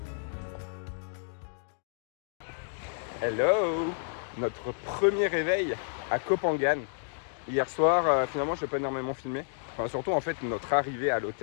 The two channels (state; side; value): silent; right; digital silence